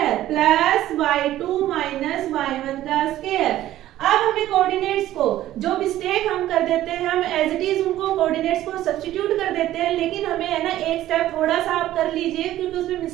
प्लस y2 - y1 का स्क्वायर। अब हमें कोऑर्डिनेट्स को, जो मिस्टेक हम कर देते हैं, हम एज इट इज उनको कोऑर्डिनेट्स को सब्स्टिट्यूट कर देते हैं, लेकिन हमें है ना एक स्टेप थोड़ा सा आप कर लीजिए क्योंकि उसमें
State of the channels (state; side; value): quieter; left; 13.9 dB